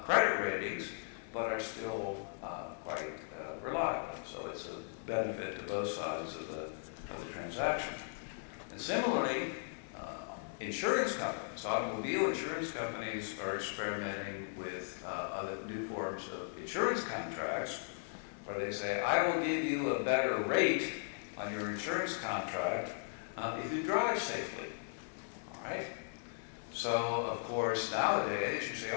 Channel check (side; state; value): right; silent; 53 dB below the other